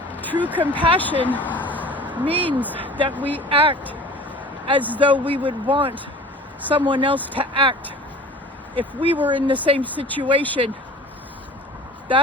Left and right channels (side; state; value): both; normal; correlation 0.43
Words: True compassion means that we act as though we would want someone else to act if we were in the same situation.